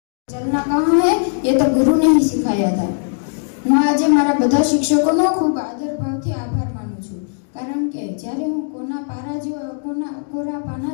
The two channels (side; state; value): right; silent; digital silence